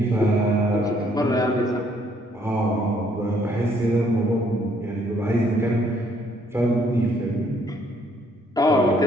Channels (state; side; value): normal; both; correlation 0.66